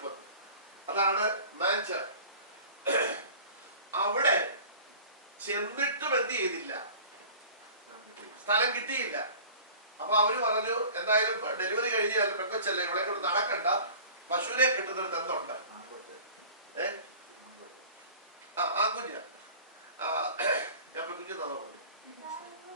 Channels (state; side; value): inverted; both; correlation -0.43